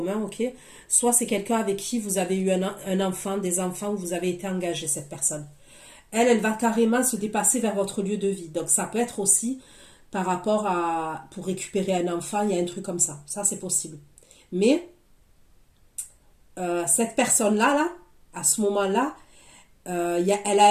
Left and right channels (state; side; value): identical; both; correlation 1.00